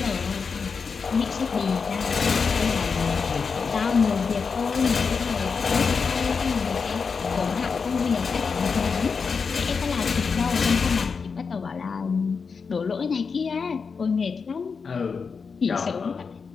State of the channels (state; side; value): quieter; right; 5.3 dB